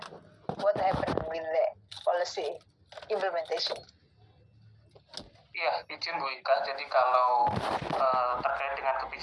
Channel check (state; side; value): identical; both; correlation 1.00